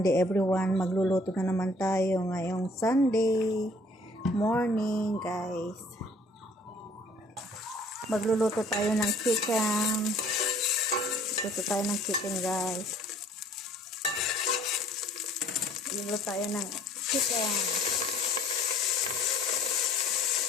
everyone. Magluluto na naman tayo ngayong Sunday morning, guys. Magluluto tayo ng chicken. Magluluto tayo ng chicken, guys. Magluluto tayo ng chicken.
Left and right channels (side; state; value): both; normal; correlation 0.57